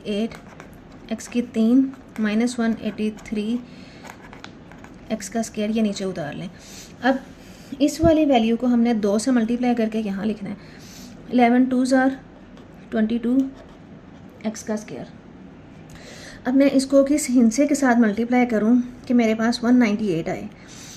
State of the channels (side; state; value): both; identical; correlation 1.00